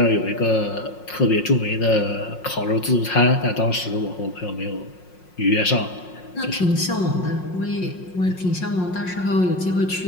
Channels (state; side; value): late; right; 5.5 ms